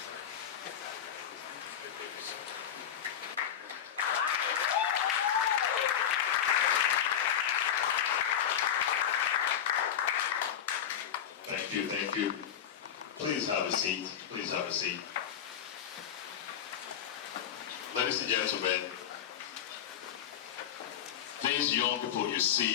Thank you. Please have a seat. Please have a seat. Ladies and gentlemen, these young people you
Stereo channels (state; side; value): quieter; right; 9.3 dB